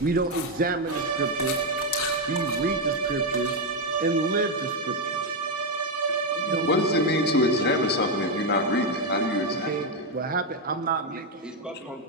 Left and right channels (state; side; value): normal; both; correlation 0.04